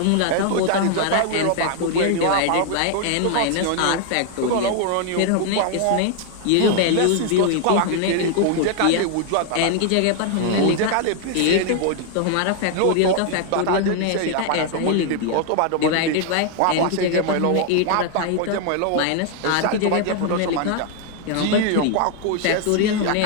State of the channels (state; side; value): different; both; correlation 0.00